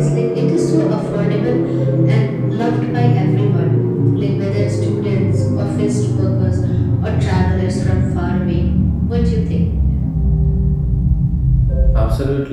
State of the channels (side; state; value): both; identical; correlation 1.00